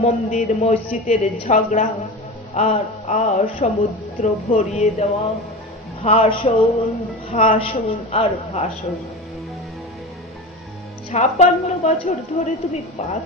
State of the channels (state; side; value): normal; both; correlation 0.28